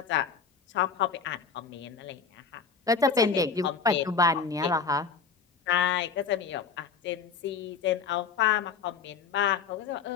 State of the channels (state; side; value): quieter; right; 5.8 dB